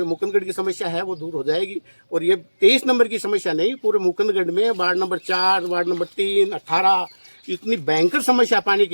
मुकुंदगढ़ की समस्या है वो दूर हो जाएगी। और ये 23 नंबर की समस्या नहीं, पूरे मुकुंदगढ़ में वार्ड नंबर 4, वार्ड नंबर 3, 18 इतनी भयंकर समस्या पानी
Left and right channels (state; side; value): inverted; both; correlation -1.00